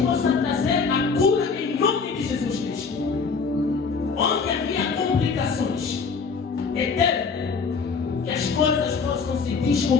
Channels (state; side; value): quieter; right; 5.2 dB